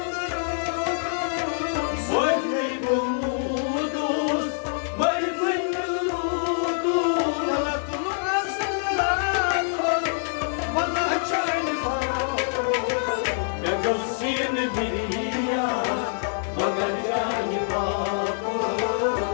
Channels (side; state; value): right; silent; 56 dB below the other